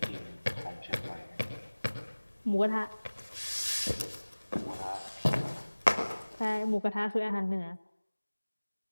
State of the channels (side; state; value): both; inverted; correlation -1.00